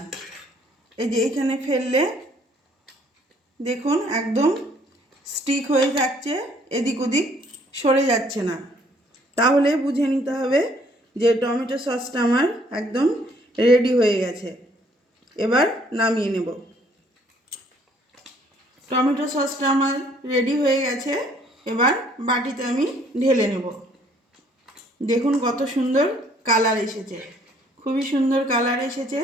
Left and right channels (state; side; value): normal; both; correlation 0.62